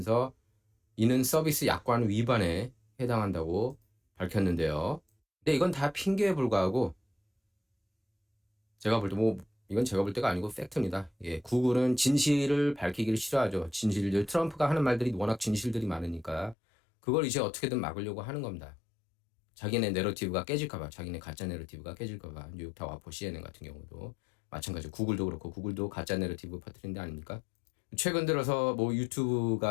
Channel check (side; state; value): right; drops out; at 16.6 s